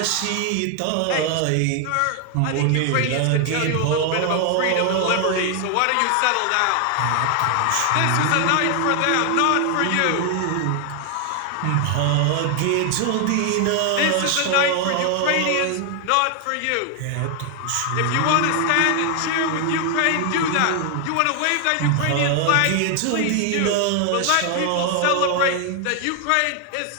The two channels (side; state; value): both; different; correlation 0.00